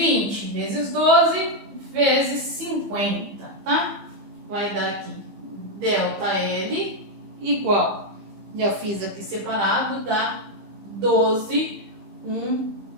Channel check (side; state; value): left; late; 15 ms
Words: vezes 12 vezes 50, tá? Vai dar aqui delta L igual, já fiz aqui separado, dá 12, 1,